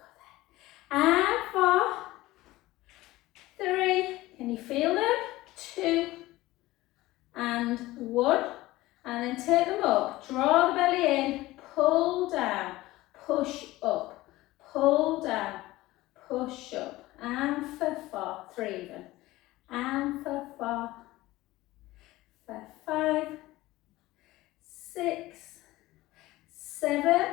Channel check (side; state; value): right; quieter; 18.0 dB